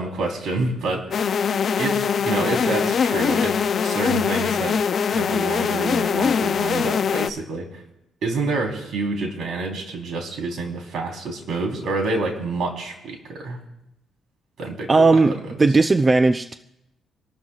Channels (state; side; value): normal; both; correlation 0.78